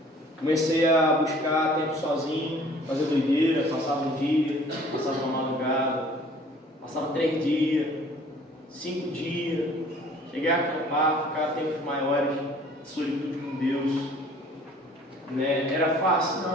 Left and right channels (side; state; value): both; normal; correlation 0.53